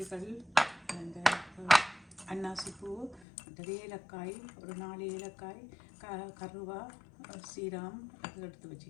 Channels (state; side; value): drops out; right; at 3.2 s